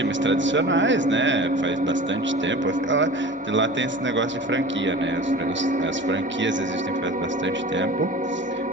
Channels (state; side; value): normal; both; correlation 0.38